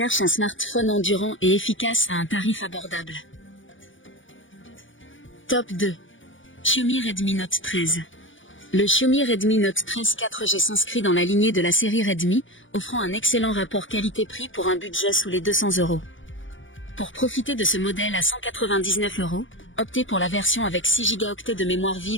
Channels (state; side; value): late; right; 0.56 ms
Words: un smartphone endurant et efficace à un tarif abordable. Top 2. Xiaomi Redmi Note 13. Le Xiaomi Redmi Note 13 4G s'inscrit dans la lignée de la série Redmi, offrant un excellent rapport qualité-prix pour un budget sous les 200 €. Pour profiter de ce modèle à 199 €, optez pour la version avec 6 Go de mémoire